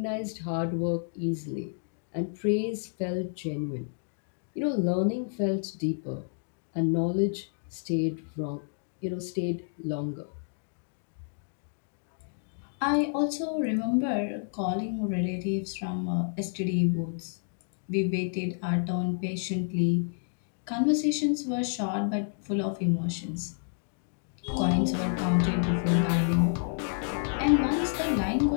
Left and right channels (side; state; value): right; silent; digital silence